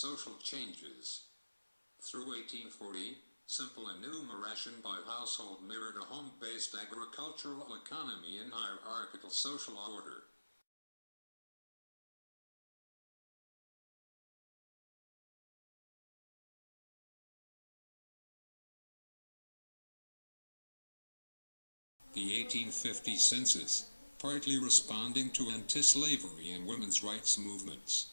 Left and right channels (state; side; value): inverted; both; correlation -1.00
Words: changes. Through 1840, simple enumeration by household mirrored a home-based agricultural economy in hierarchical social order. The 1850 census, partly responding to anti-slavery and women's rights